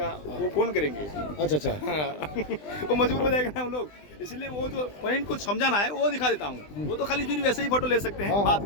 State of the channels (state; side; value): late; right; 20 ms